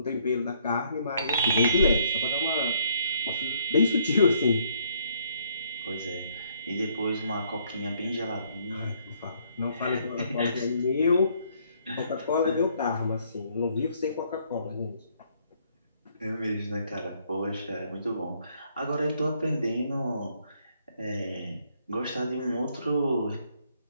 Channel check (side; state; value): both; inverted; correlation -0.67